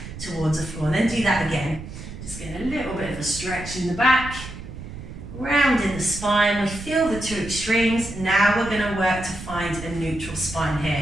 towards the floor. And then do that again. Just get a little bit of a stretch in the back. Rounding the spine, we feel the two extremes. Now we're going to work to find a neutral spine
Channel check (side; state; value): right; noise; rumble, 11 dB below the sound